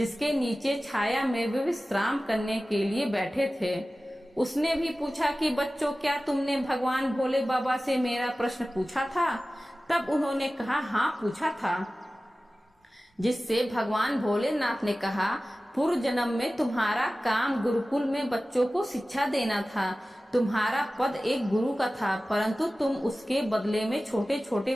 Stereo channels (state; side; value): normal; both; correlation 0.96